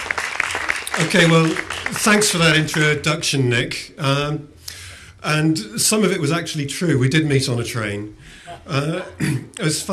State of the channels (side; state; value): both; identical; correlation 1.00